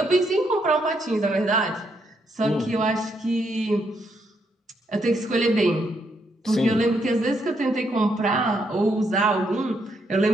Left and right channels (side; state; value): both; normal; correlation 0.76